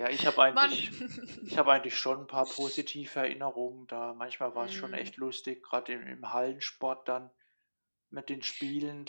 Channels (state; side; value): inverted; both; correlation -1.00